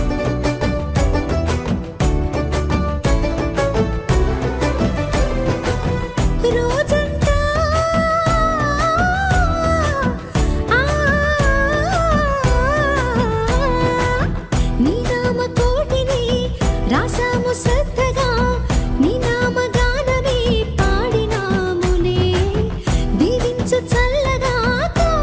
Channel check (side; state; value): both; identical; correlation 1.00